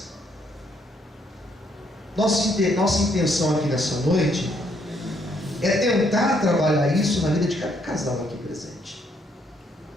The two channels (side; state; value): both; normal; correlation 0.71